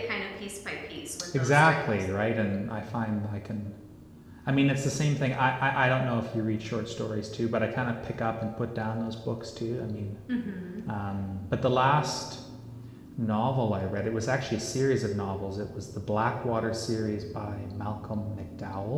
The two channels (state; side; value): identical; both; correlation 1.00